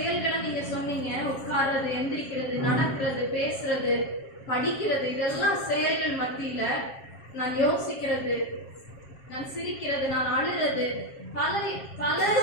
நீங்க சொன்னீங்க. உட்கார்றது, எந்திரிக்கிறது, நடக்கிறது, பேசுறது, படிக்கிறது, இதெல்லாம் செயல்கள் மத்தியில நான் யோசிக்கிறது, நான் சிரிக்கிறது, நான் அழுறது, பல பல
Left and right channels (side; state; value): right; late; 7.4 ms